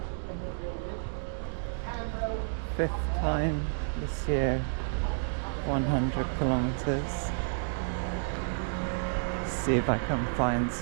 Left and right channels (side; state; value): left; silent; digital silence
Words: Fifth time this year, 100 kilometers. See if I can find